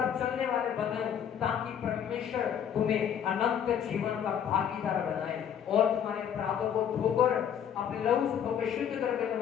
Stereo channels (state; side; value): quieter; right; 8.7 dB